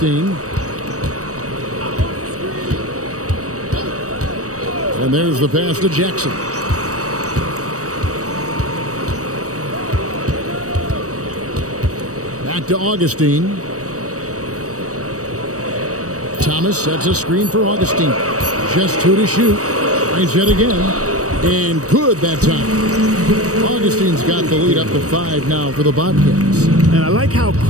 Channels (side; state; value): left; late; 0.66 ms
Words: And there's the pass to Jackson. Back to Augustine. Thomas sets a screen for Augustine. Just 2 to shoot. Tries it again. And good that time. Augustine's got the lead up to 5 now for the Bobcats. And I like how